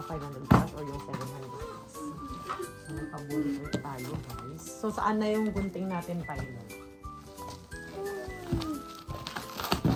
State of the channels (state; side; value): identical; both; correlation 1.00